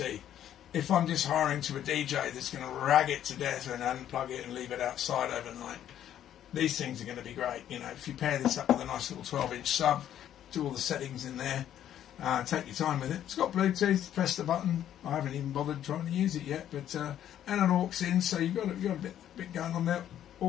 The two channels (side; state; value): right; quieter; 10.9 dB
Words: If I'm just hiring to a DJ that's going to rag it to death and unplug it and leave it outside overnight, these things are going to be great. You know, if you pair this up with a nice little 12-inch sub, do all the settings in there, take your time with it. It's got Bluetooth, press the button. I haven't even bothered trying to use it yet, but and an aux in, so you've got a bit going on there.